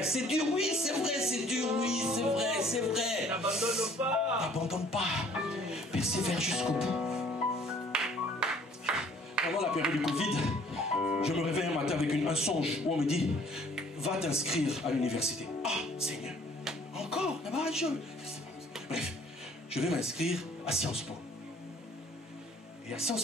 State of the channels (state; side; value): normal; both; correlation 0.57